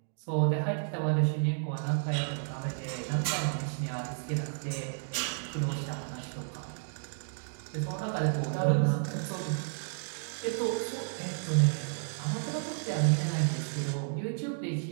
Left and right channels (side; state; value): left; silent; digital silence